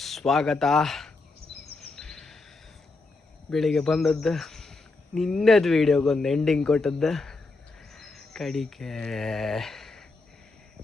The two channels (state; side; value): quieter; right; 3.5 dB